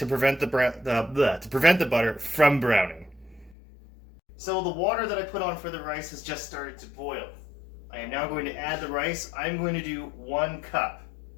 prevent the butter from browning. So the water that I put on for the rice has just started to boil. I am now going to add the rice. I'm going to do 1 cup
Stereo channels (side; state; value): right; drops out; at 3.6 s